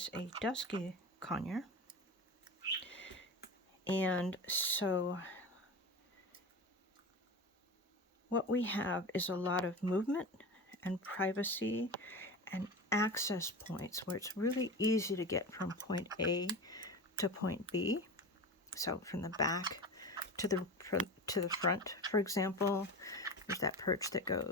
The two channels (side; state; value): both; normal; correlation 0.28